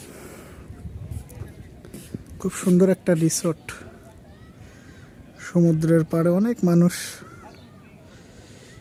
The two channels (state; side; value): identical; both; correlation 1.00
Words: খুব সুন্দর একটা রিসোর্ট, সমুদ্রের পাড়ে অনেক মানুষ